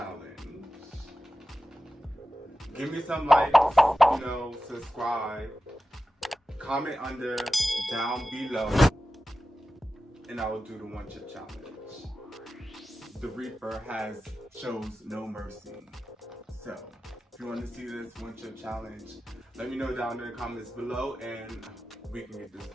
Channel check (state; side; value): normal; both; correlation 0.94